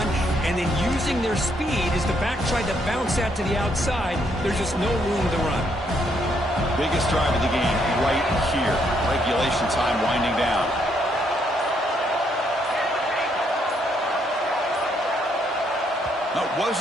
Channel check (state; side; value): normal; both; correlation 0.73